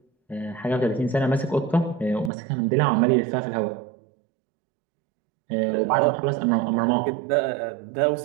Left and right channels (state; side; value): drops out; left; at 2.3 s